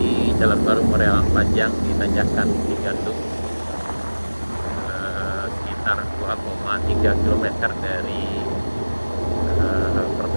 jalan baru Moreal Panjang di Tanjakan Cigandung, sekitar 2,3 km dari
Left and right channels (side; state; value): both; inverted; correlation -1.00